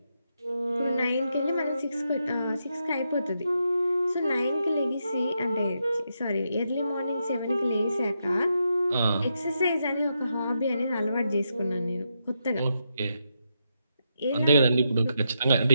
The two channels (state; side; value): inverted; both; correlation -0.83